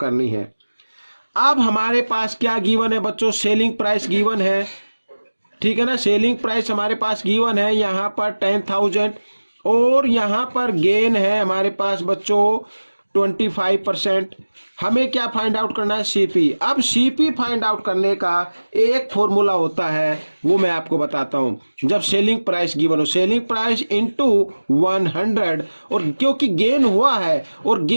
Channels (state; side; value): inverted; both; correlation -1.00